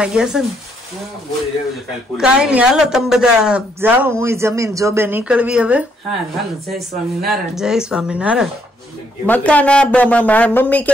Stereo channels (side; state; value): both; normal; correlation 0.72